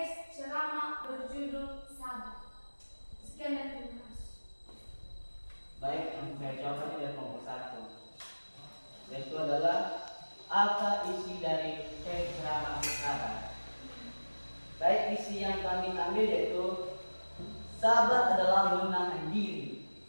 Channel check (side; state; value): both; inverted; correlation -1.00